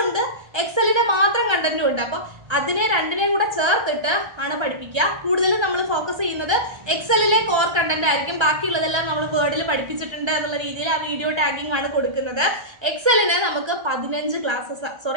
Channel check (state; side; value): late; left; 1.3 ms